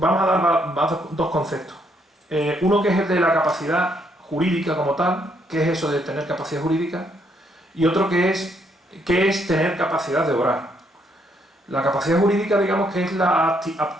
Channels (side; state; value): both; normal; correlation 0.72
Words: a dar dos conceptos. Uno que es el de la capacidad jurídica como tal, que es eso de tener capacidad jurídica, y otro que es tener capacidad de obrar. La capacidad jurídica, digamos, que es la